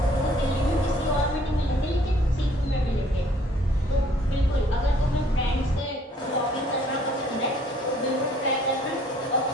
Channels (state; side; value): normal; both; correlation 0.60